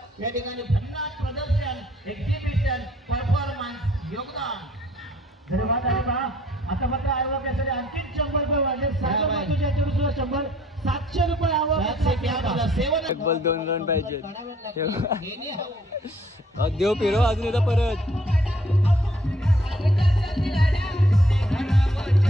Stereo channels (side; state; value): both; normal; correlation 0.61